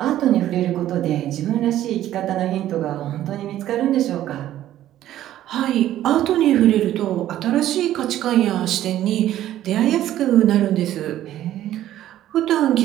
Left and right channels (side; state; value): left; quieter; 12.8 dB